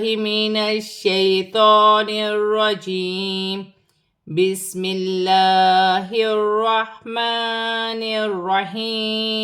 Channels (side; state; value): both; identical; correlation 1.00